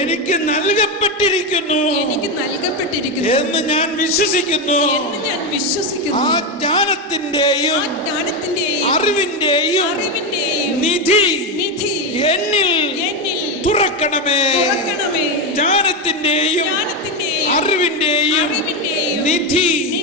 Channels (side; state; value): both; normal; correlation 0.11